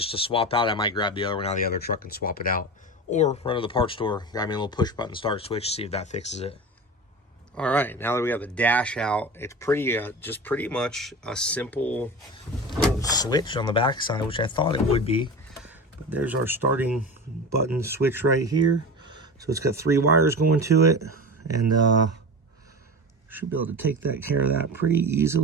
to swap out, I might grab the other one out of the other truck and swap it out. Or run to the parts store, grab me a little push button start switch, see if that fixes it. All right, now that we have the dash out, it's just pretty much a simple little switch on the backside, which I thought it would be. But there's our starting button switch right here. So it's got 3 wires going to it, and should be able to take that care of that pretty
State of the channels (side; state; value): both; normal; correlation 0.29